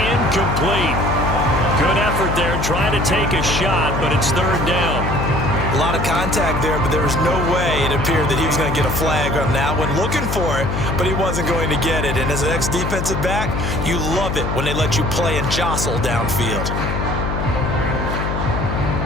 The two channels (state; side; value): noise; left; hum, 2 dB below the sound